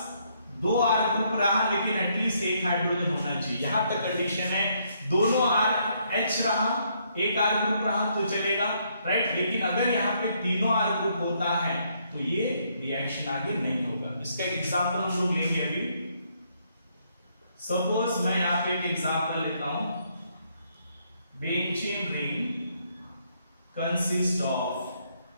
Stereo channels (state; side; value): inverted; both; correlation -0.72